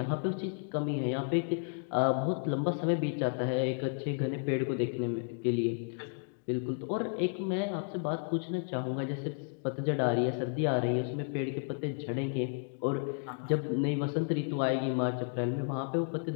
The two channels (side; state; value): right; silent; 56 dB below the other